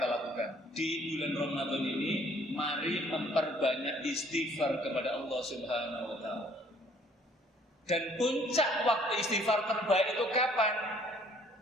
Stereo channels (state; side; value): normal; both; correlation 0.60